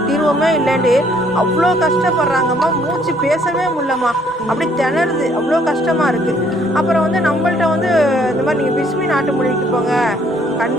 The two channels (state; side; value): normal; both; correlation 0.64